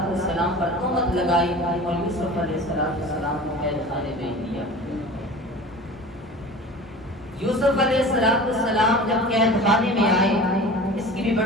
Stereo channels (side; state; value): both; normal; correlation 0.38